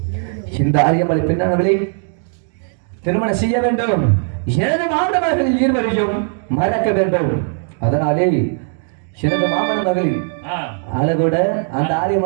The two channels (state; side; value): silent; left; 58 dB below the other